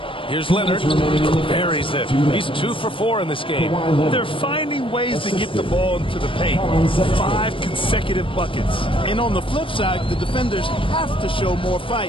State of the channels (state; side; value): late; right; 0.25 ms